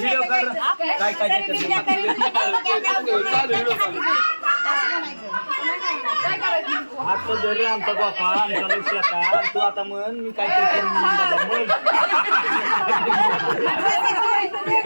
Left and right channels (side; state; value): both; inverted; correlation -1.00